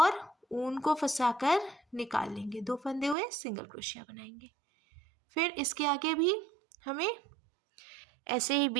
ऊन को फंसाकर निकाल लेंगे। 2 फंदे हुए, सिंगल क्रोशिया बनाएंगे। फिर इसके आगे भी हमें ऐसे ही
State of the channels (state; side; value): drops out; left; at 3.2 s